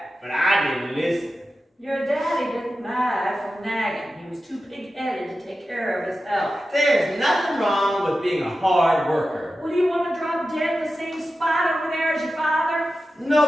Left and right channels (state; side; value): normal; both; correlation 0.93